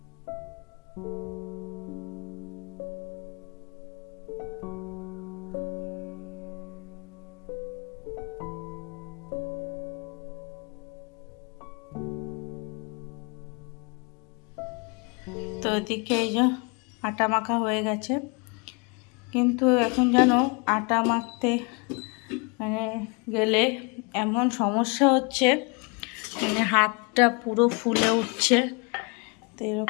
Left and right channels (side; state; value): right; quieter; 31.9 dB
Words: ওদিকে এই যে আটা মাখা হয়ে গেছে, কিন্তু এখন যেন আটা মাখতে মানে গেলে এমন সমস্যা হচ্ছে, মানে হাতটা পুরো ফুলে উঠছে। তো